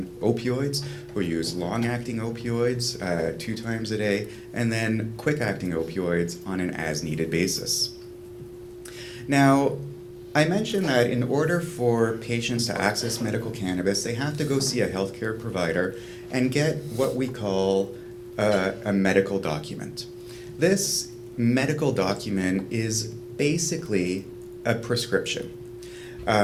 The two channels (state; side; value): identical; both; correlation 1.00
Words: opioids, who use long-acting opioids 2 times a day, and then quick-acting opioids on an as-needed basis. Now, I mentioned that in order for patients to access medical cannabis, they have to go see a healthcare provider and get what we call a medical document. This medical document is basically a prescription.